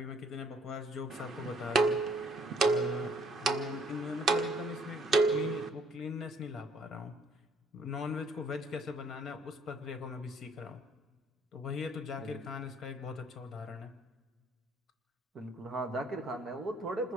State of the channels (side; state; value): both; normal; correlation 0.63